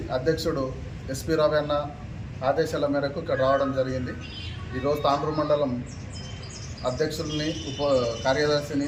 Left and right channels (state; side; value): identical; both; correlation 1.00